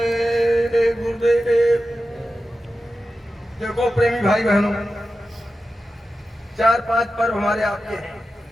गुरुदेव। देखो प्रेमी भाई बहनों, 4-5 पर्व हमारे आपके हैं।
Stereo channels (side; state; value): both; normal; correlation 0.92